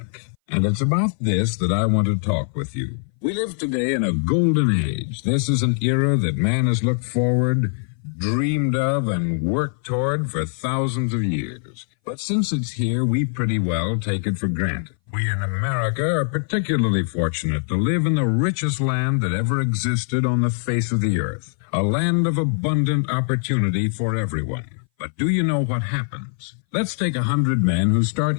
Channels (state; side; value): silent; right; 60 dB below the other